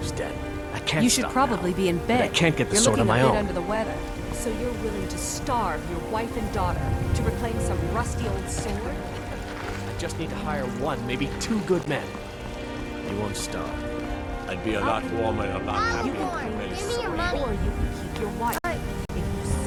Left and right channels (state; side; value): identical; both; correlation 1.00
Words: den. I can't You should stop probably now. be in bed. But I can't get the You're sword on looking my a bit own. under the weather. So you're willing to starve your wife and daughter to reclaim some rusty old sword? I just need to hire one, maybe two good men. You won't starve. I'd be a lot warmer and a lot happier You can with claim the this Give me your sword, money. or you can keep your wife. If you